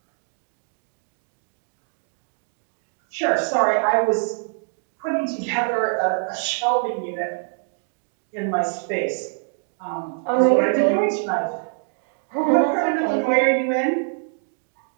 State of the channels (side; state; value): left; silent; digital silence